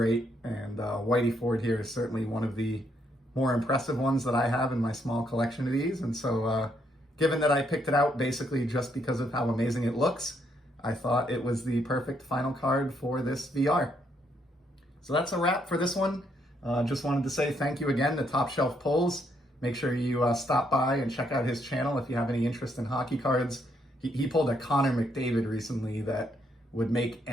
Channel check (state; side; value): normal; both; correlation 0.74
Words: And Willy Ford here is certainly one of the more impressive ones that I have in my small collection of these. And so given that I picked it out basically just because of how amazing it looks, I thought it was the perfect final card for this VR. So that's a wrap for this one. Just wanted to say thank you again to TopShelfPullz. Make sure you stop by and check out his channel if you have any interest in hockey cards. He pulled a Connor McDavid recently that would make